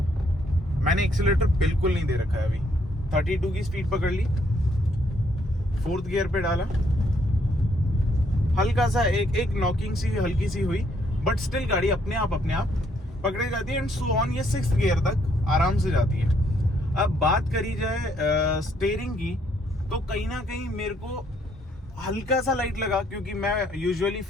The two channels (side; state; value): both; normal; correlation 0.70